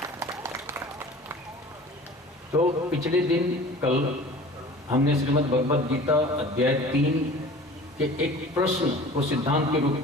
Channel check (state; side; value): normal; both; correlation 0.43